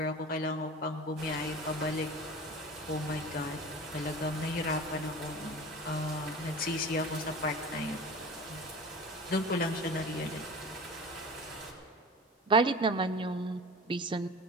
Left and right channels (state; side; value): normal; both; correlation 0.36